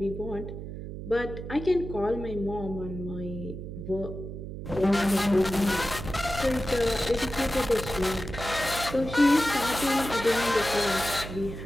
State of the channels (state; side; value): noise; right; hum, 9 dB below the sound